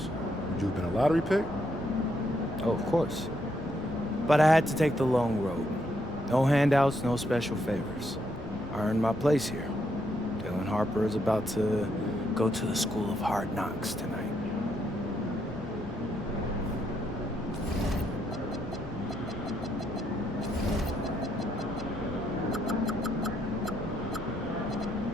would you have been a lottery pick? Oh, of course. But I had to take the long road. No handouts, no special favors. I earned my place here. Dylan Harper is about to go to the School of Hard Knocks tonight.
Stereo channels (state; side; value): normal; both; correlation 0.76